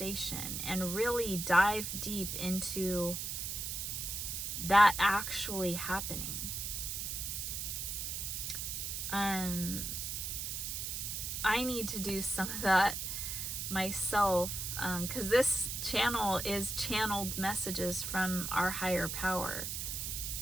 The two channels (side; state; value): right; noise; hiss, 3 dB below the sound